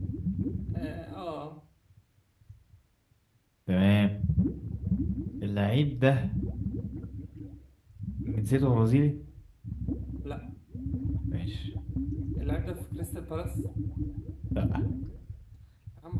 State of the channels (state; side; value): identical; both; correlation 1.00